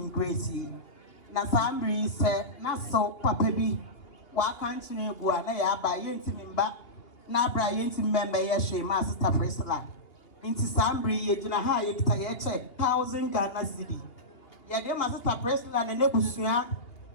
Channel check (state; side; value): late; right; 2.8 ms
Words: grace na sambri se na so papa bi wa kanchine egu a na ya ba ye ntimi mba na abra ye ntimi member ye hwe ma sister Priscilla inti sambri ye gina ha ye kita ye check 1000 Ghana cedi ye de ma sister Priscilla ne nebusua